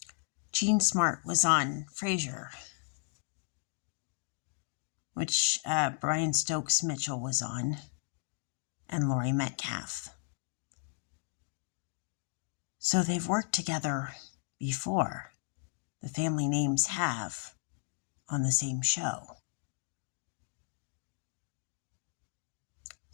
Jean Smart was on Frasier, which Brian Stokes Mitchell was on, and Laurie Metcalf. So they've worked together before. The family names have on the same show.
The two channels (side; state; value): right; silent; 55 dB below the other